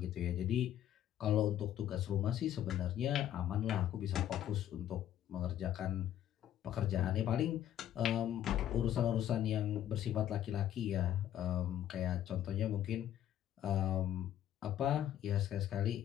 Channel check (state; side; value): quieter; right; 11.3 dB